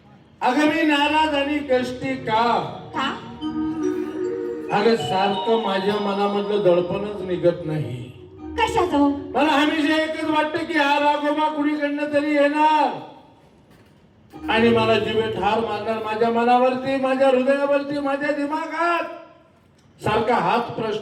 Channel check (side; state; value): both; identical; correlation 1.00